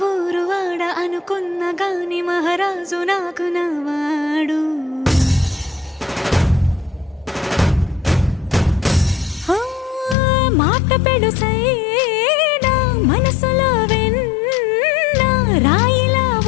ఊరు వాడ అనుకున్న గాని మహారాజు నాకు నవ్వాడు. మాట పెడుసైనా మనసులో వెన్న రాయిలా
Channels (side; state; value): right; drops out; at 10.2 s